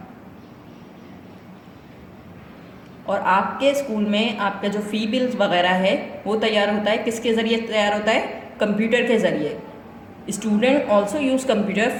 और आपके स्कूल में आपका जो फ़ी बिल्स वगैरह है वो तैयार होता है. किसके ज़रिए तैयार होता है? कंप्यूटर के ज़रिए. Student also use computer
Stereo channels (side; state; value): both; identical; correlation 1.00